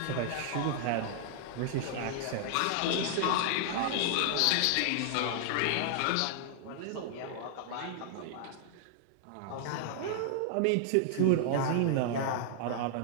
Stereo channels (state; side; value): different; both; correlation -0.01